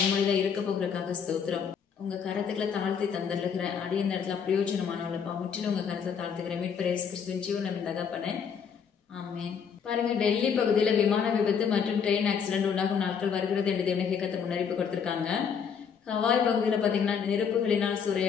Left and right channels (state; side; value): quieter; right; 6.9 dB